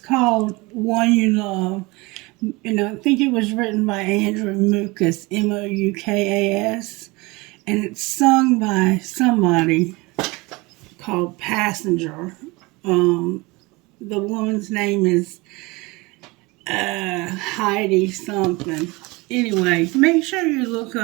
One You Love. And I think it was written by Andrew Mukas, Moukas. And it's sung by somebody called Passenger. The woman's name is Heidi something. Anyway, make sure you look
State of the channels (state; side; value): quieter; left; 24.2 dB